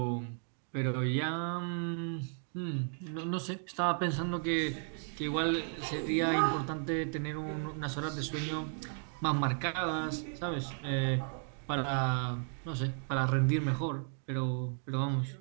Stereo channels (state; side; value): silent; left; 55 dB below the other